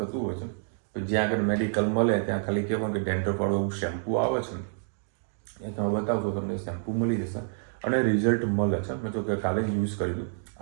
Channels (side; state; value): left; silent; digital silence